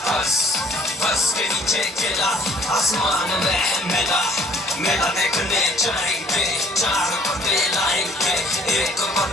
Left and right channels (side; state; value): both; normal; correlation 0.57